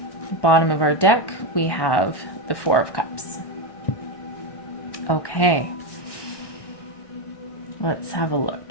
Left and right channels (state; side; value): late; right; 1.1 ms